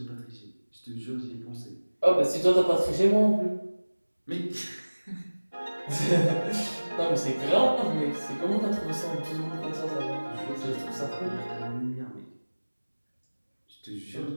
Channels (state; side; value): inverted; both; correlation -1.00